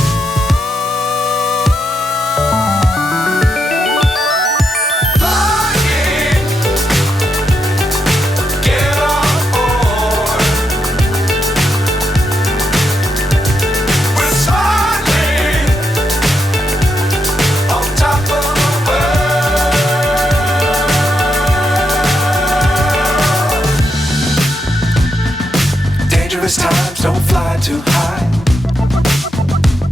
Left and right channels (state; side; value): normal; both; correlation 0.82